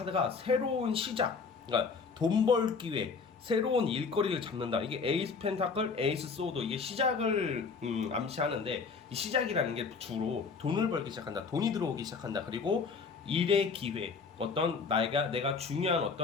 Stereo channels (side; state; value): right; quieter; 5.1 dB